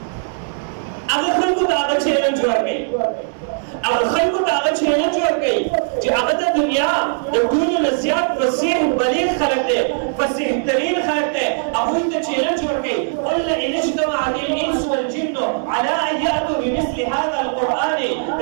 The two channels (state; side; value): silent; left; digital silence